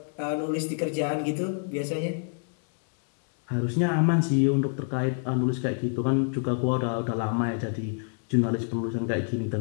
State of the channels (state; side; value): silent; right; 60 dB below the other